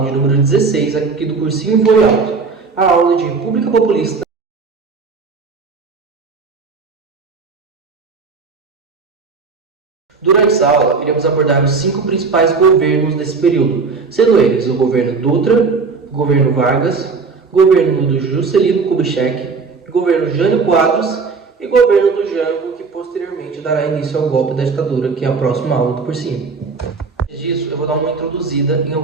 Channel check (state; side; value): quieter; left; 4.7 dB